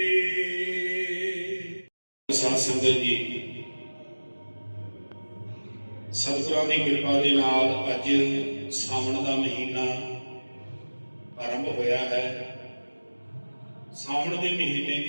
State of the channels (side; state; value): both; inverted; correlation -1.00